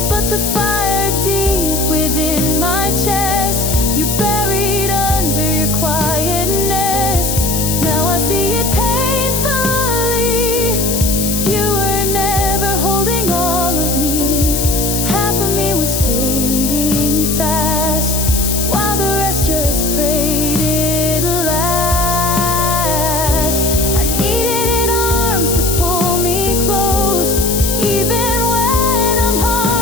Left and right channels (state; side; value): noise; left; hiss, 2 dB below the sound